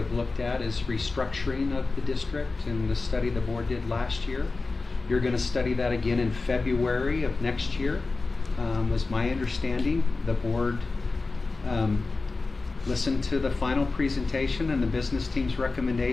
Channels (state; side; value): quieter; right; 3.7 dB